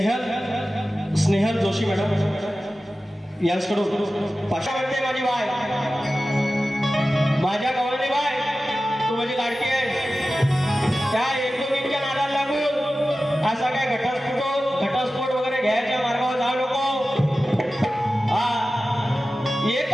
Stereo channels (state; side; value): normal; both; correlation 0.95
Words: स्नेहल जोशी मॅडम यांच्याकडून 500 म्हणते. माझी बाय, माझ्या गवळणी बाय, तू माझी लाडकी आहे. त्या एकमेकींच्या नादाला लागून असा काय घटस्फोट वगैरे घ्यायच्या मार्गावर जाऊ नको. हा